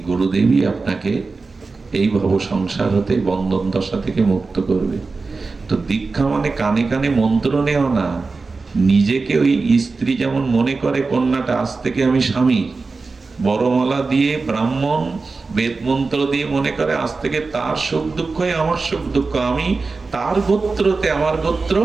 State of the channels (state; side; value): quieter; left; 4.1 dB